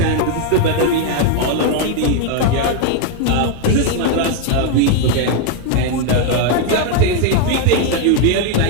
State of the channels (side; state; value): both; different; correlation 0.00